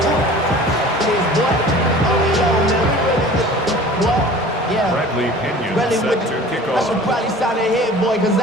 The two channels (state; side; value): normal; both; correlation 0.43